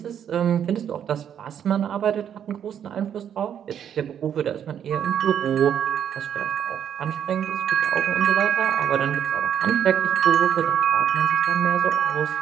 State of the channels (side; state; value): left; quieter; 9.1 dB